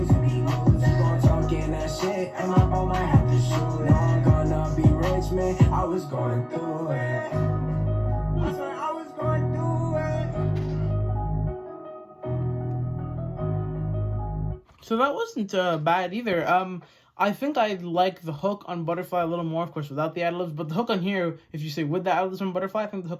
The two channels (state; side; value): identical; both; correlation 1.00